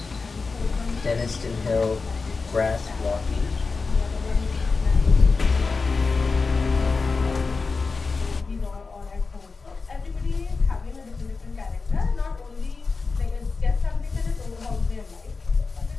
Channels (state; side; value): quieter; right; 4.3 dB